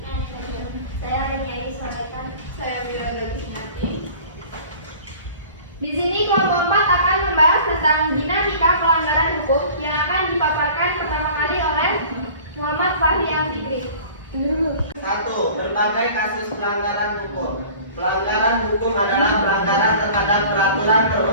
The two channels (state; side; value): inverted; both; correlation -0.45